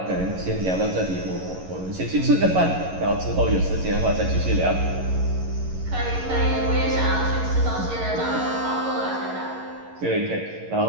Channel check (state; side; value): late; left; 11 ms